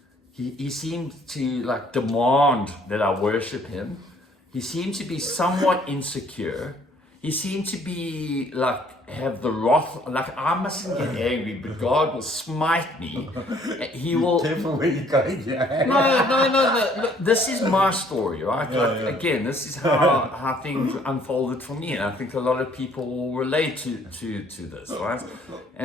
He seemed to like demand that I worship him. He seemed to be somewhat insecure. He seemed to be like have the wrath, like I mustn't get angry, but God will smite me. He will. Careful where you're going, yeah. No. Look, this is my story, right? Yeah, like yeah. again, this is how things unfolded for me, and I think a lot of people will relate to this, right?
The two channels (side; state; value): both; normal; correlation 0.61